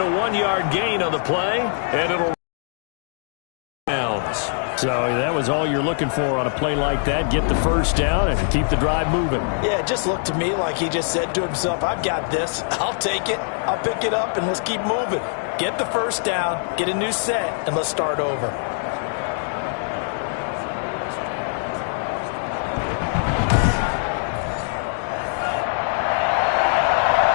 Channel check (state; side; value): silent; right; digital silence